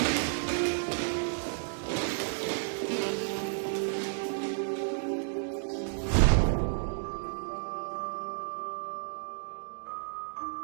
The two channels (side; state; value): left; silent; digital silence